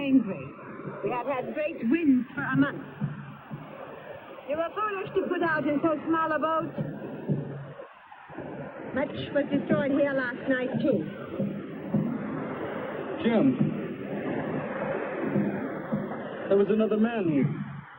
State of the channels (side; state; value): both; identical; correlation 1.00